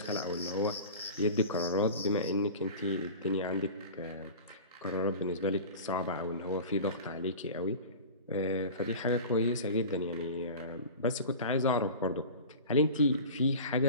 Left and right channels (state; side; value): inverted; both; correlation -0.35